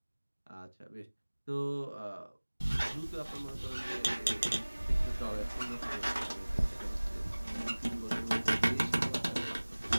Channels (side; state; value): both; inverted; correlation -1.00